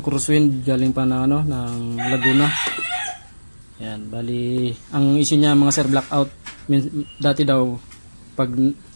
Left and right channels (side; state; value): both; inverted; correlation -1.00